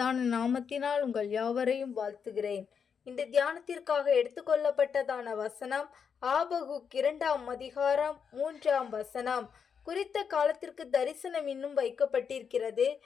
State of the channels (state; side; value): quieter; right; 6.7 dB